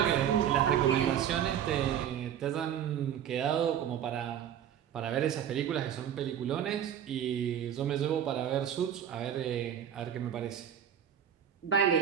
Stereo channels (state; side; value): quieter; left; 9.5 dB